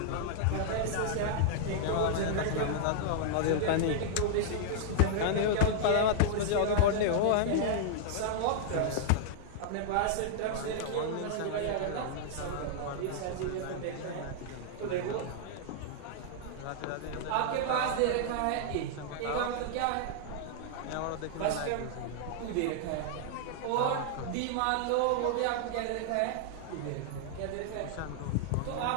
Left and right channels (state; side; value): different; both; correlation -0.01